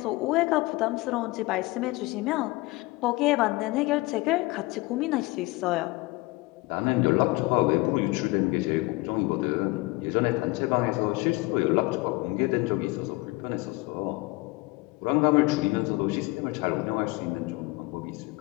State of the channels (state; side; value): quieter; right; 22.7 dB